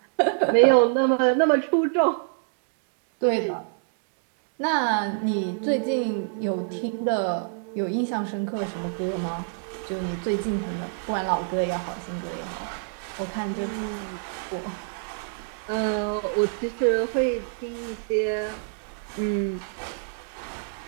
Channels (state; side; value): silent; left; digital silence